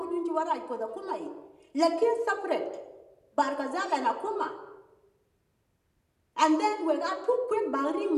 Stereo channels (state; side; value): identical; both; correlation 1.00